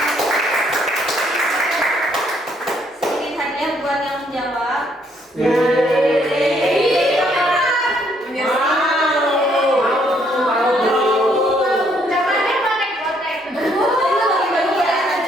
Sedikit hadiah buat yang menjawab.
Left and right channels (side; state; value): both; normal; correlation 0.69